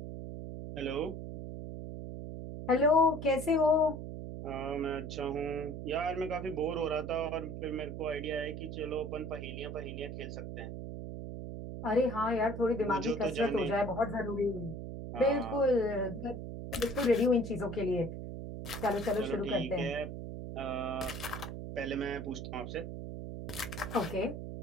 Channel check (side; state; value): right; noise; hum, 7 dB below the sound